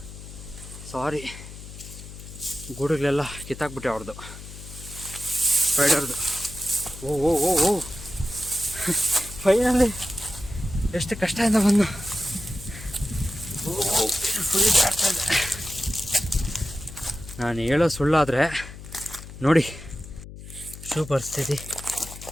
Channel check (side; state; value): left; noise; hum, 14 dB below the sound